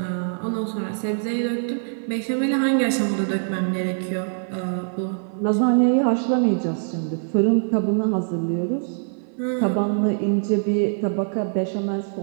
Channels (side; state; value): left; silent; 58 dB below the other